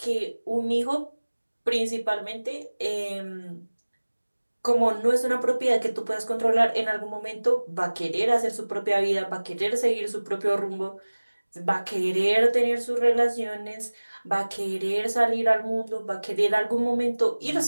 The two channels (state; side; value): inverted; both; correlation -1.00